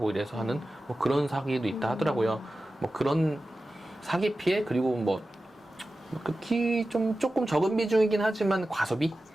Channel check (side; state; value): both; normal; correlation 0.94